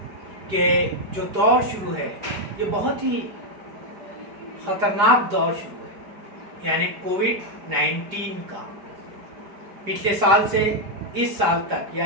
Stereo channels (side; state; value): left; late; 4.9 ms